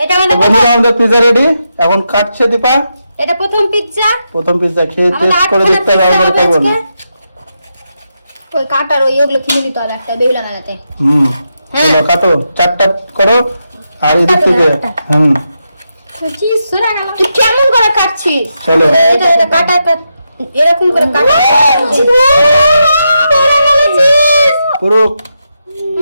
এটা আমাদের বন্ধুরা আমাদের পিৎজা রেডি, এখন কাটছে দীপা। এটা প্রথম পিৎজা। প্রথম পিৎজা খেয়ে টেস্ট করে দেখতে হবে আমাদের কেমন। ওই কাটার ওই ওগুলো কিনে নিতে হবে একটা বেহুলা লাগাতে। চলো কাটো, 4টা করো আর এদিক থেকে চিজ সরা না। তুই কেমন করে কাটছিস? চলো। এটা কাটা এরকম করে কাটা। পুরো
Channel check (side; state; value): both; inverted; correlation -0.85